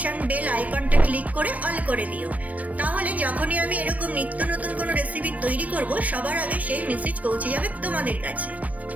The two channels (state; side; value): late; left; 0.070 ms